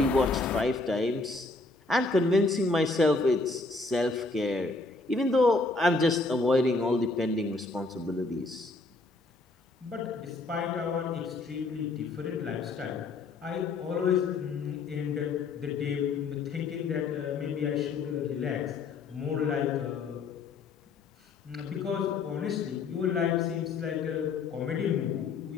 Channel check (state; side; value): quieter; right; 3.7 dB